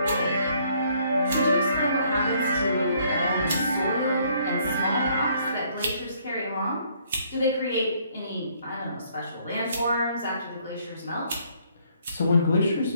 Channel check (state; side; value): inverted; both; correlation -0.65